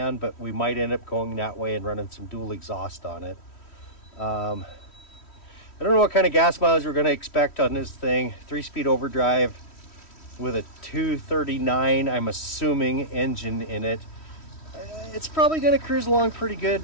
but we might end up going that way and running some dual exhaust on it. I don't know what kind of gas mileage we're going to expect on this thing. 3-speed overdrive with a 239, I'm assuming, engine in it. It's probably going to cruise along pretty good,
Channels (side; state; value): right; late; 3.1 ms